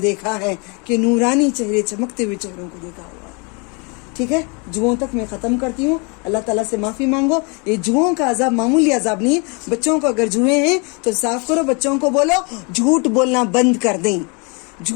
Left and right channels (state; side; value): quieter; right; 32.6 dB